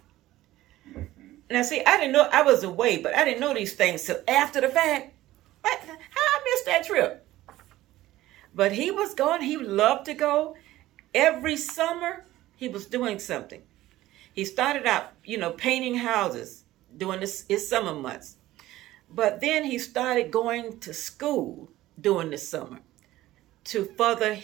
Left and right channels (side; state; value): left; quieter; 15.8 dB